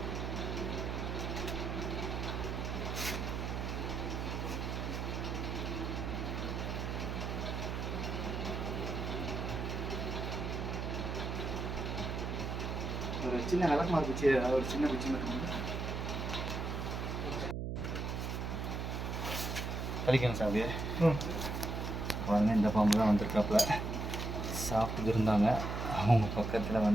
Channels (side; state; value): right; noise; hum, 3 dB below the sound